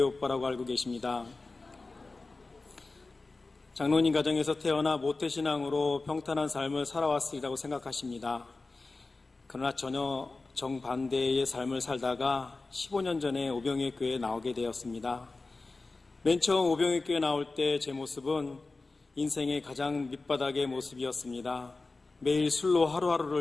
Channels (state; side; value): quieter; right; 3.5 dB